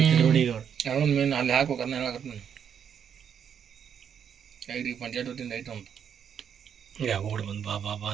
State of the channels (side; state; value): left; quieter; 8.1 dB